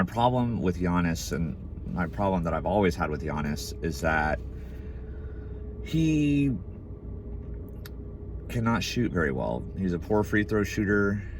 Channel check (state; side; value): identical; both; correlation 1.00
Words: problem with Giannis, and my problem that I've always had with Giannis, is that he cannot shoot very well. He's a poor free throw shooter,